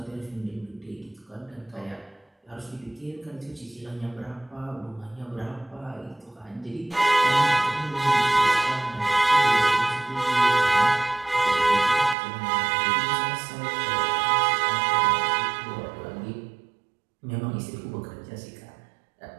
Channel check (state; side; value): drops out; left; at 12.2 s